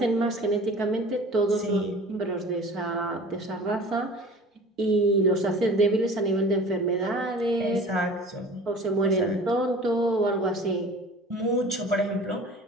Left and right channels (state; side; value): normal; both; correlation 0.43